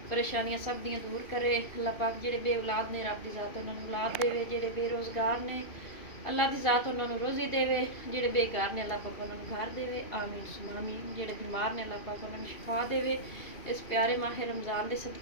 परेशानियां सब दियां दूर करे। अल्लाह पाक जेडे बे औलाद ने रब दी ज़ात उन्होंने औलाद देवे, जेडे बेरोज़गार ने अल्लाह की ज़ात उन्होंने रोज़ी देवे, जेडे बेकार ने अल्लाह पाक उन्होंने घर देवे। आमीन सुमा आमीन। जेडे बीमार ने अल्लाह पाक उन्होंने शिफा देवे इस प्यारे माह रमज़ान के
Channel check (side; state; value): right; late; 2.7 ms